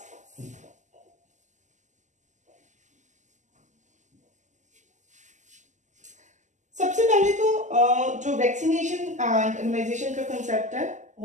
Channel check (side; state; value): left; late; 0.35 ms